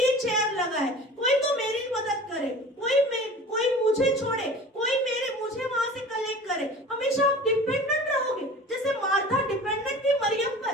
चेयर लगाए, कोई तो मेरी मदद करे, कोई मुझे छोड़े, कोई मुझे वहां से कलेक्ट करे। हमेशा आप डिपेंडेंट रहोगे, जैसे मार्था डिपेंडेंट थी मरियम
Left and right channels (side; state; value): both; normal; correlation 0.40